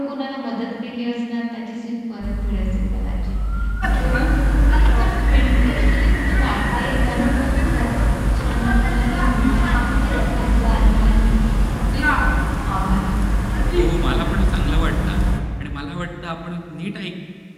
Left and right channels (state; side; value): identical; both; correlation 1.00